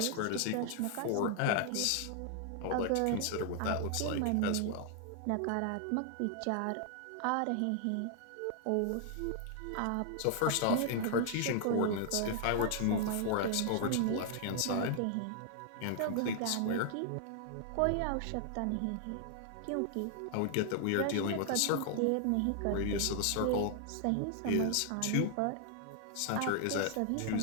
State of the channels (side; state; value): both; different; correlation 0.00